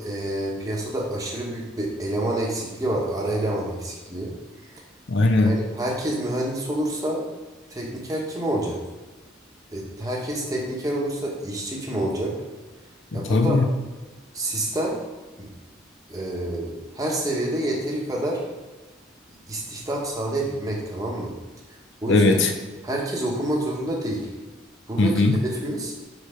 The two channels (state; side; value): normal; both; correlation 0.64